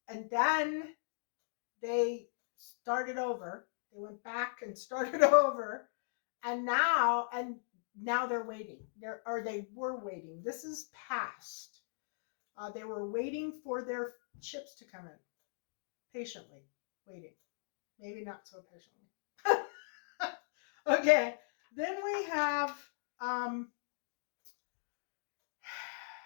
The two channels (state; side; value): silent; right; digital silence